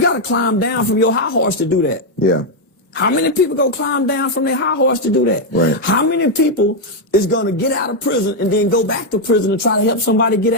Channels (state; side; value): normal; both; correlation 0.01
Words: got to climb down from your high horse to do that. Yeah. How many people go climb down from their high horse to do that? Right. How many people is going to get out of prison and then go back to prison and try to help somebody get